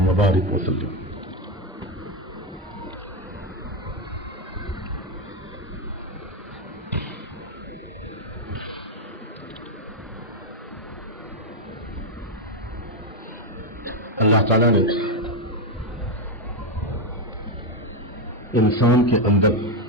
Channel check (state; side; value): normal; both; correlation 0.07